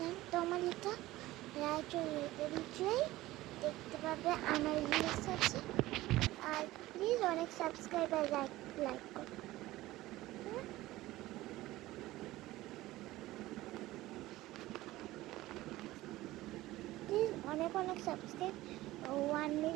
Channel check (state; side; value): quieter; left; 17.3 dB